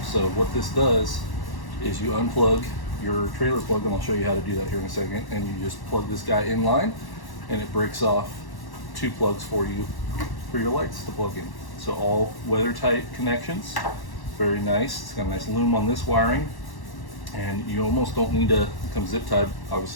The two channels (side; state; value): right; late; 1.1 ms